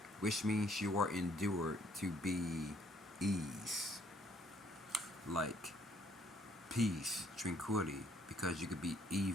which means you are endured to be ease, like peace, tranquility, because you could be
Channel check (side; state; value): both; normal; correlation 0.65